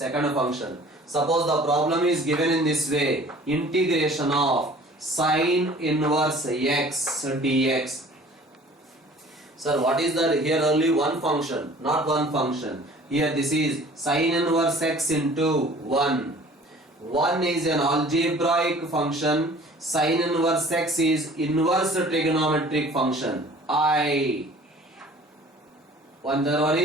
function. Suppose the problem is given in this way, integration of sine inverse x dx. Sir, what is that? Here only one function, not one function. Here this is sine inverse x into 1. 1 is an algebraic function. Sine inverse x is inverse trigonometric function. The one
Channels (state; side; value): normal; both; correlation 0.49